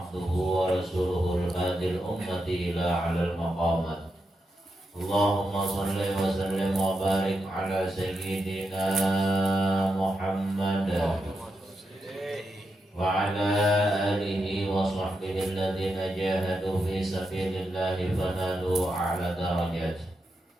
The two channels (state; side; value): normal; both; correlation 0.86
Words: wa rasuluhul hadil ummati ila 'alal maqamat. Allahumma shalli wa sallim wa barik ala sayyidina Muhammad wa ala alihi wa sahbihi alladhina jahadu fi sabilillahi fanalu a'la darajat.